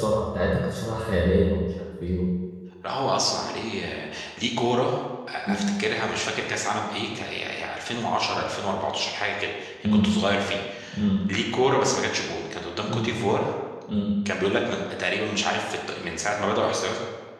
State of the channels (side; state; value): both; identical; correlation 1.00